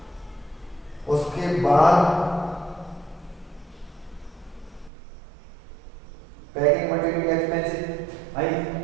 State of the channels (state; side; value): drops out; left; at 4.9 s